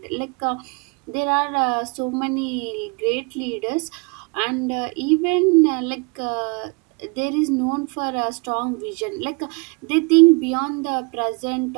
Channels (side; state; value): left; quieter; 32.0 dB